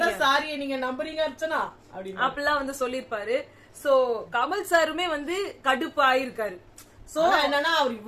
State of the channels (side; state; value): both; identical; correlation 1.00